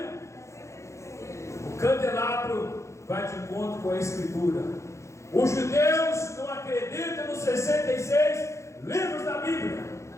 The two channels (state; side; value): late; right; 0.14 ms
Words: O candelabro vai de encontro com a Escritura. Os judeus não acreditam nos 66 livros da Bíblia,